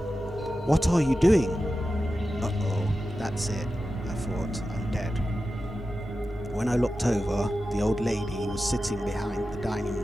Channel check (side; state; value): both; normal; correlation 0.92